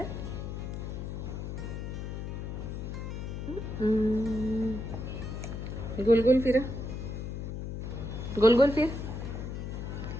गोल गोल फिरा, गोल गोल फिर.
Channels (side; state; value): left; noise; hum, 5 dB below the sound